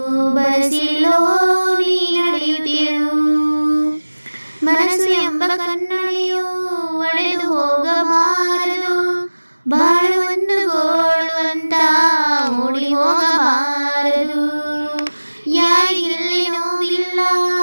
ಬರಸಿಲ್ಲೋ ನೀ ನಡೆಯುತ್ತಿರು. ಮನಸ್ಸು ಎಂಬ ಕನ್ನಡಿಯು ಒಡೆದು ಹೋಗಬಾರದು, ಬಾಳು ಒಂದು ಗೋಳು ಅಂತ ಓಡಿ ಹೋಗಬಾರದು. ಯಾರಿಗಿಲ್ಲಿ ನೋವಿಲ್ಲ,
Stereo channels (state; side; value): inverted; both; correlation -1.00